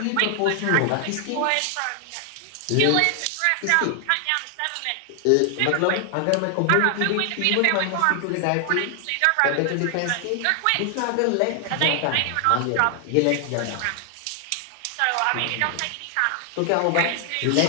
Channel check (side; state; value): both; different; correlation 0.00